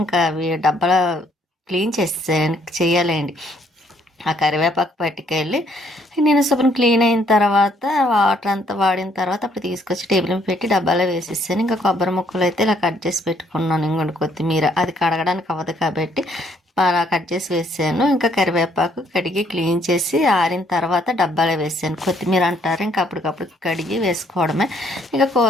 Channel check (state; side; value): normal; both; correlation 0.67